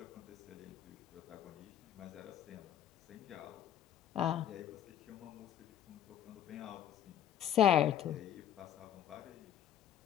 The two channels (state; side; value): quieter; right; 10.7 dB